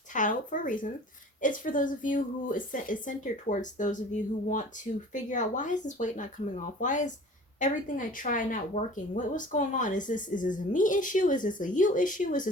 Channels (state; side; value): normal; both; correlation 0.45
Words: titled for a reason. It's for those of you who is centered towards those of you who want to figure out, why is this weight not coming off? Why is everything I try not working? What's going on? Is this a me issue? Is this a you issue? Is